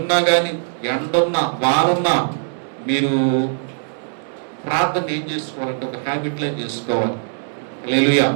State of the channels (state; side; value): silent; left; 65 dB below the other